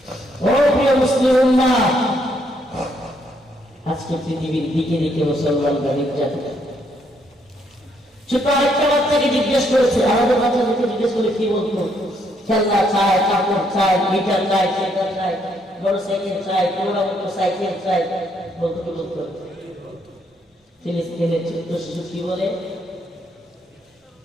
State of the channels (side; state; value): both; normal; correlation 0.72